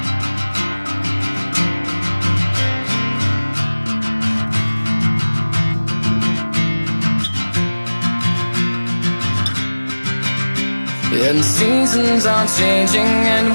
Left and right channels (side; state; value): both; inverted; correlation -1.00